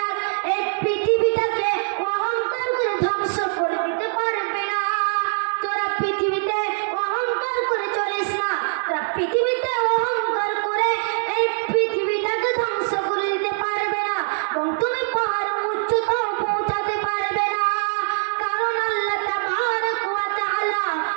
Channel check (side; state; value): left; silent; 64 dB below the other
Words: এই পৃথিবীটাকে অহংকার করে ধ্বংস করে দিতে পারবে না। তোরা পৃথিবীতে অহংকার করে চলিস না, তোরা পৃথিবীতে অহংকার করে এই পৃথিবীটাকে ধ্বংস করে দিতে পারবে না, এবং তুমি পাহাড় উচ্চতাও পৌঁছাতে পারবে না। কারণ আল্লাহ তাবারক ওয়া তাআলা